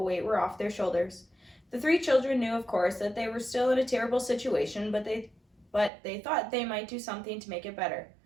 were off their shoulders. The 3 children knew, of course, that they were still in a terrible situation, but they thought they might do something to make it better.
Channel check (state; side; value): drops out; left; at 5.9 s